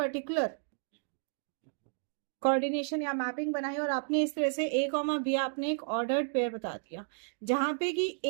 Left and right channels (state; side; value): silent; left; digital silence